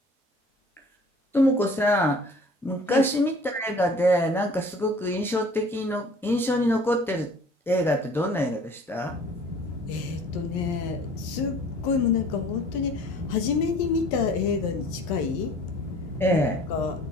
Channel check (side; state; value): both; normal; correlation 0.50